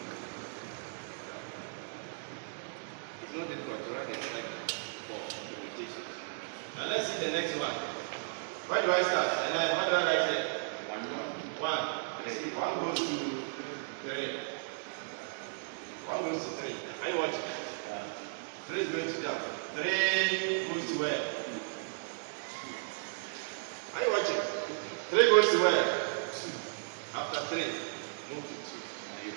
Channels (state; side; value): silent; left; digital silence